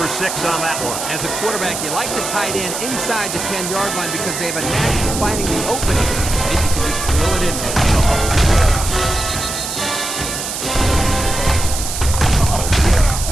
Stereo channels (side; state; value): right; noise; hiss, 5 dB below the sound